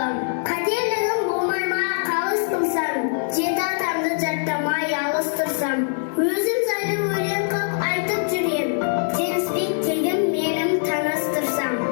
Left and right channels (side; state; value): right; silent; digital silence